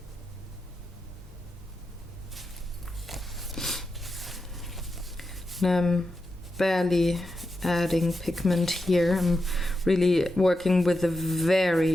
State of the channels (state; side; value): normal; both; correlation 0.88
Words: I'm barely adding pigment here. I'm really working with a